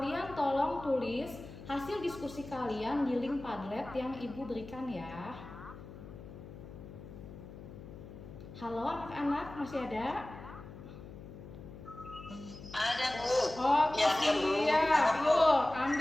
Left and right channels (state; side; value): noise; left; hum, 14 dB below the sound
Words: tolong tulis hasil diskusi kalian di link Padlet yang Ibu berikan ya. Halo anak-anak, masih ada? Ada Bu. Oke, Ya, siap. Yuk,